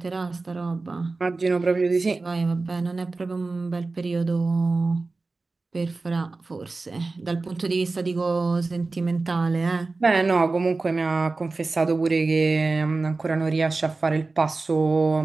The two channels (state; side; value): quieter; left; 3.6 dB